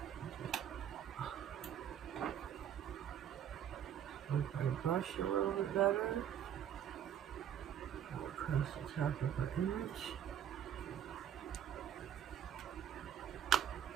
If I brush a little bit better, go across the top of our image.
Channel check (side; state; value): left; quieter; 9.7 dB